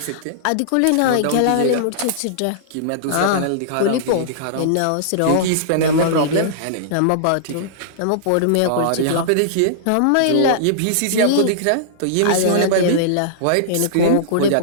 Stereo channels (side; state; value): both; different; correlation -0.02